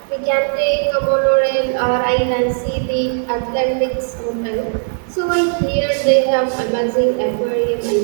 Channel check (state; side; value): silent; left; 58 dB below the other